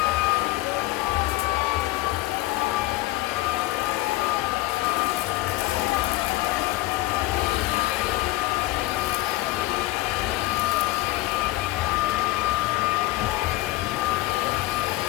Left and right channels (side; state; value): right; quieter; 19.3 dB